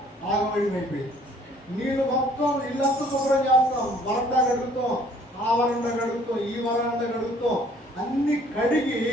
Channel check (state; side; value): normal; both; correlation 0.58